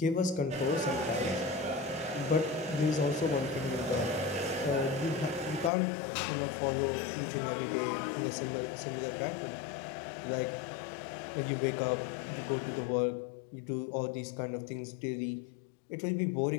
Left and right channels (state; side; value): drops out; right; at 5.7 s